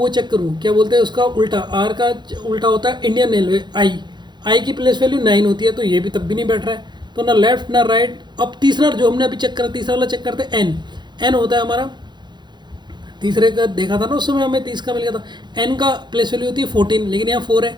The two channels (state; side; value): late; left; 0.21 ms